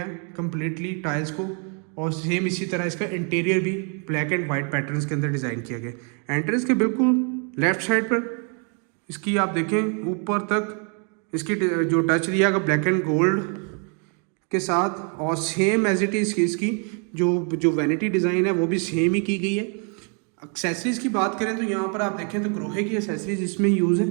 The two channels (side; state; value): left; quieter; 39.5 dB